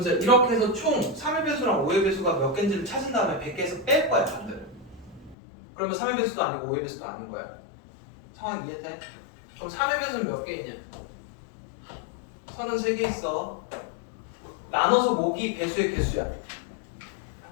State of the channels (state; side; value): drops out; right; at 5.4 s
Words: 이렇게 해서 총 3의 배수랑 5의 배수가 몇 개인지를 찾은 다음에 100개에서 뺄 거야, 반대로. 그러면 3의 배수도 아니고 5의 배수도 아닌 거야. 상황 이해돼? 그럼 3의 배수는 몇 개이냐? 33개 있어. 나눠서 목이 배수의 개수야.